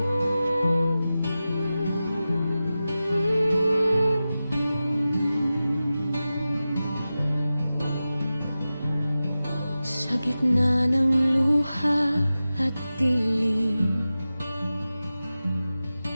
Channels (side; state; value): both; inverted; correlation -0.94